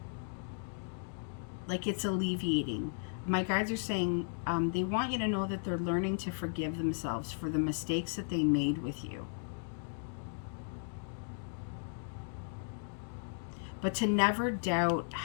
Like it's alleviating. My guides are saying they want you to know that they're learning to forgive themselves for the mistakes that they made with you. But to never doubt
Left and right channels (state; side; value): silent; right; digital silence